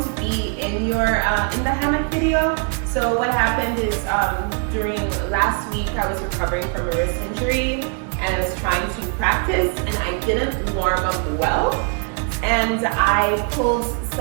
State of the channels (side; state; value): left; quieter; 37.9 dB